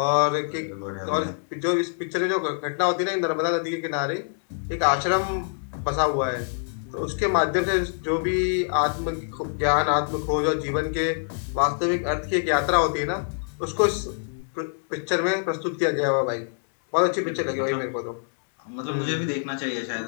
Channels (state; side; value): silent; right; digital silence